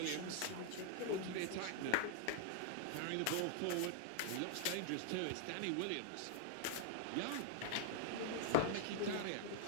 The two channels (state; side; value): different; both; correlation 0.00